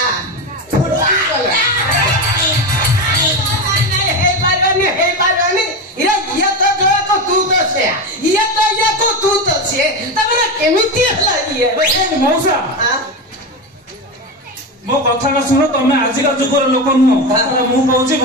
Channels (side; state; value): both; normal; correlation 0.18